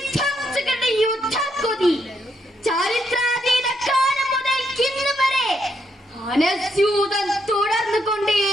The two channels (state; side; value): normal; both; correlation 0.76